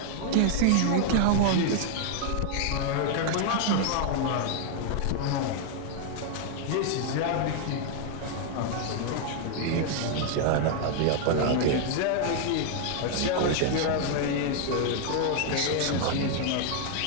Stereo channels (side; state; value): both; different; correlation 0.00